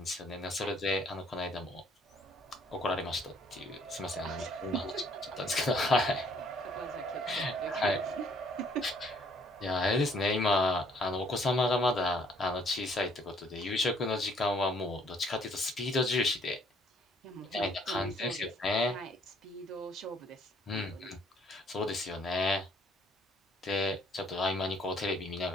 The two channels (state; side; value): normal; both; correlation 0.63